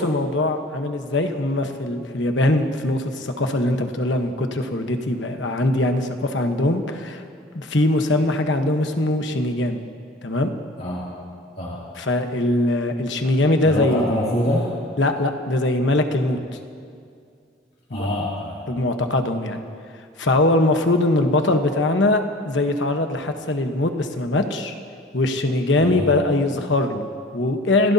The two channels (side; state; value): both; normal; correlation 0.44